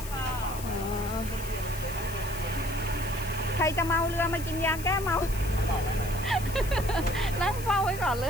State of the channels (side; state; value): left; noise; hiss, 12 dB below the sound